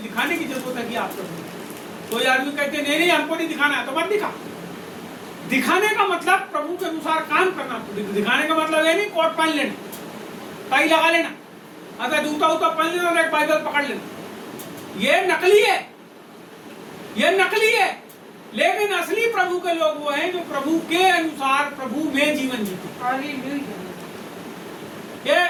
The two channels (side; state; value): both; identical; correlation 1.00